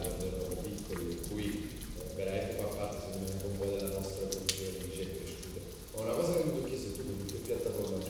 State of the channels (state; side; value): identical; both; correlation 1.00